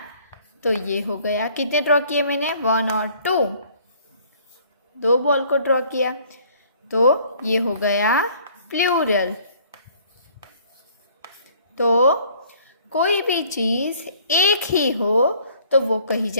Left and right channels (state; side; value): inverted; both; correlation -0.57